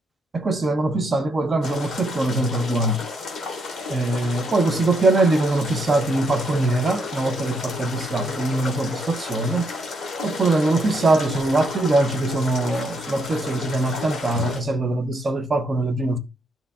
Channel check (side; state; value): both; normal; correlation 0.76